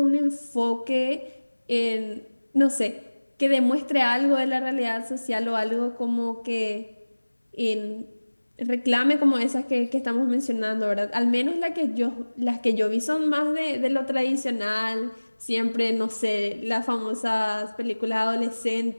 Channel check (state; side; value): inverted; both; correlation -1.00